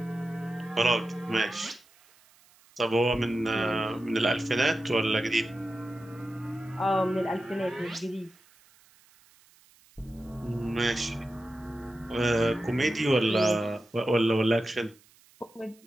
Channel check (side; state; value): right; noise; hiss, 29 dB below the sound